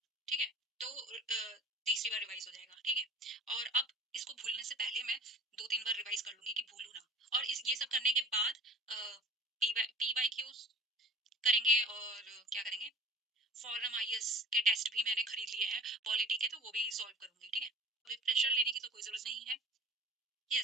ठीक है। तो तीसरी बार रिवाइज हो जाएगा, ठीक है। और अब इसको भूलने से पहले मैं 2-3 बार रिवाइज कर लूंगी कि भूलू ना। और ये सब करने के बाद पीवाई क्यूज करेंगे, और क्या करेंगे, फॉरम आईएएस के टेस्ट भी मैंने खरीद लिए हैं, पॉलिटी के, तो वो भी सॉल्व करूंगी, ठीक है। अभी प्रेशर लेने की तो कोई जरूरत नहीं है।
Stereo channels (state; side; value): normal; both; correlation 0.39